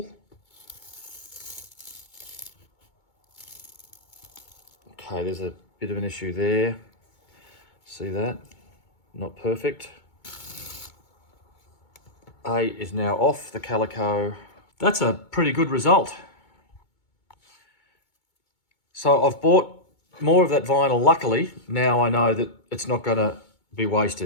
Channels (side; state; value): right; late; 2.2 ms